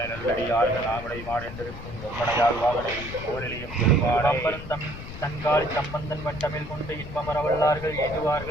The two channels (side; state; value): left; noise; rumble, 11 dB below the sound